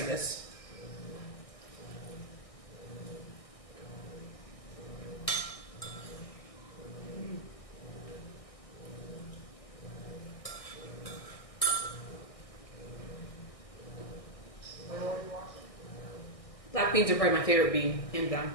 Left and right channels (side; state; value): right; late; 1.6 ms